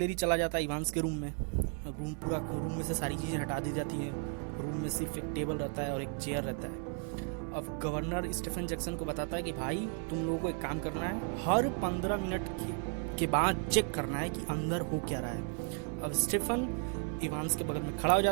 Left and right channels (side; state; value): left; quieter; 36.6 dB